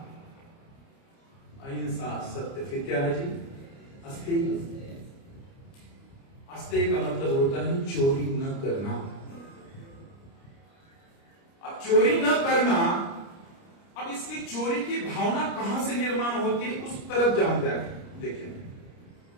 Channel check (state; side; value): late; right; 29 ms